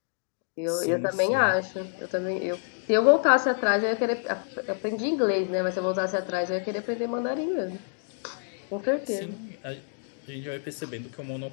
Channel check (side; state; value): right; silent; digital silence